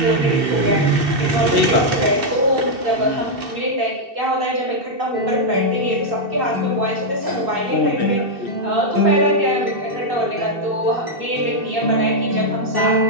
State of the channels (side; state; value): left; late; 2.7 ms